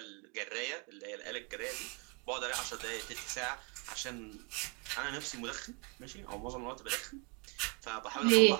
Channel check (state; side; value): quieter; left; 33.2 dB